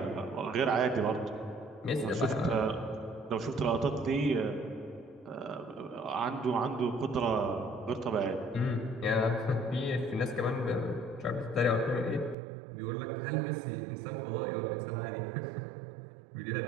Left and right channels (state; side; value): drops out; left; at 12.4 s